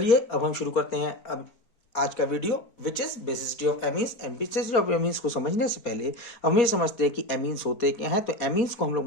अब हम शुरू करते हैं अब आज का video which is basicity of amines. Basicity of amines को समझने से पहले हम ये समझते हैं कि एमीन्स होते क्या हैं। तो एमीन्स को हम लोग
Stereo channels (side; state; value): right; late; 4.4 ms